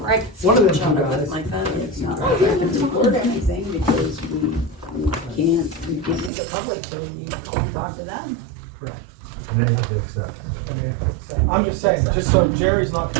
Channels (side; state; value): left; drops out; at 6.3 s